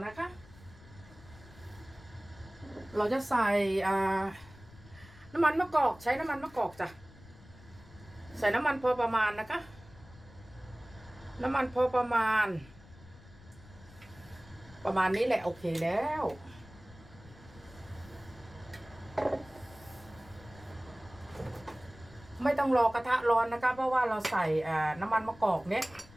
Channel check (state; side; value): noise; left; rumble, 21 dB below the sound